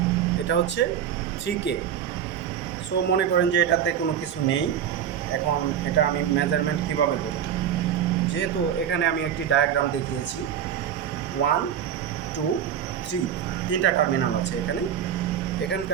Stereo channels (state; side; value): quieter; left; 9.2 dB